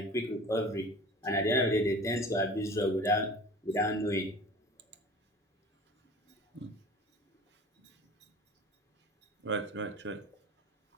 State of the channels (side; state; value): both; normal; correlation 0.41